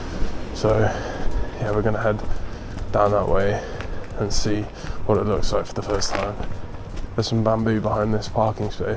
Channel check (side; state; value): both; identical; correlation 1.00